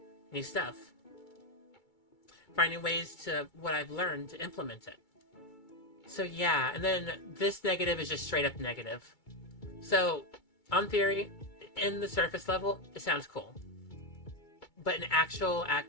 new stuff. Finding ways to what I've learned to implement it. So yeah, and then this negative is just straight up negative. So, on theory, in the surface level, it sounds cool. But in actual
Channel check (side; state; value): right; late; 2.3 ms